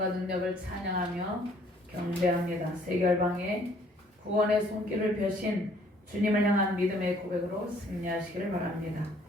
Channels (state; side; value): normal; both; correlation 0.61